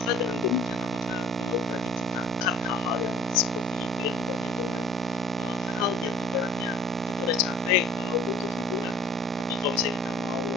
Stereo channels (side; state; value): both; normal; correlation 0.52